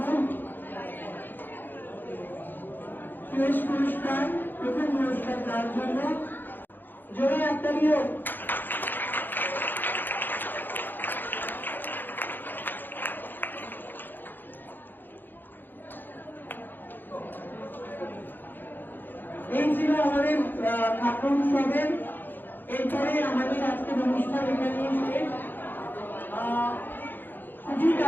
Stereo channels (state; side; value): late; right; 0.092 ms